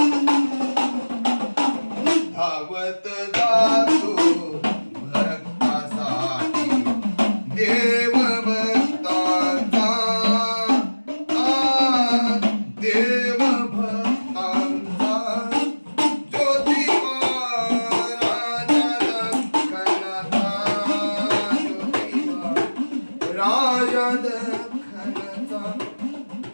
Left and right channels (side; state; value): both; inverted; correlation -1.00